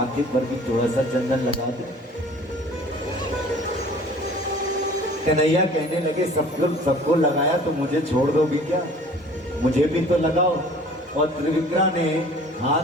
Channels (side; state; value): both; normal; correlation 0.49